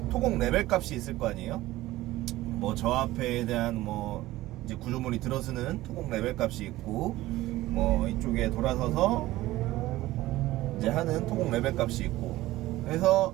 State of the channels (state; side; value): quieter; left; 16.9 dB